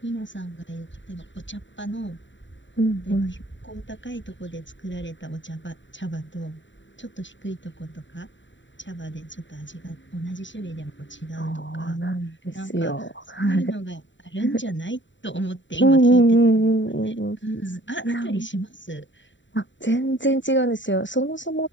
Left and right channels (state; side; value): late; right; 0.54 ms